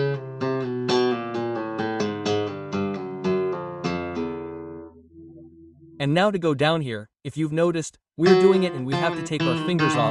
And now to go down here, if you've noticed, we're doing it and we have to take our fingers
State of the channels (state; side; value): identical; both; correlation 1.00